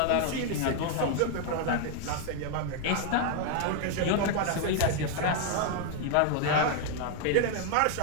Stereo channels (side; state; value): both; different; correlation 0.00